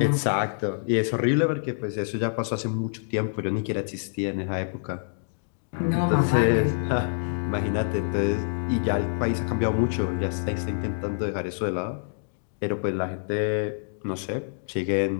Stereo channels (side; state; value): right; silent; digital silence